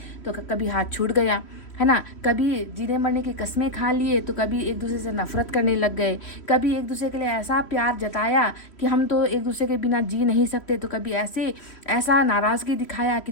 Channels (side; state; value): right; late; 3.1 ms